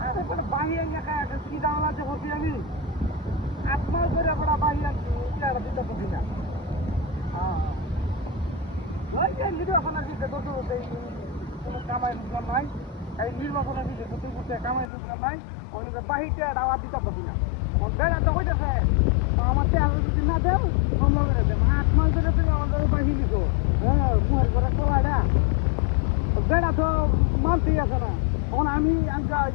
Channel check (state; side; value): drops out; right; at 14.9 s